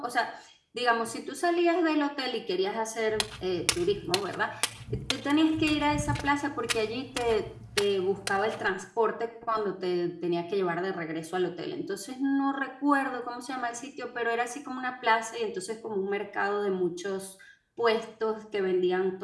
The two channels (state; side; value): identical; both; correlation 1.00